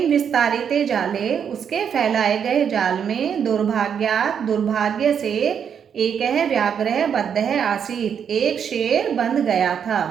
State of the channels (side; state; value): left; quieter; 7.7 dB